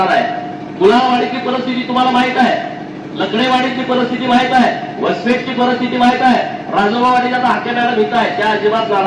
आहे. कुलावाडीची परिस्थिती तुम्हाला माहित आहे, लकडेवाडीची परिस्थिती माहित आहे, वसपेटची परिस्थिती माहित आहे, राजोबावाडीच्या आता हाके मॅडम इथं आहे, त्या अजिबात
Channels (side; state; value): both; identical; correlation 1.00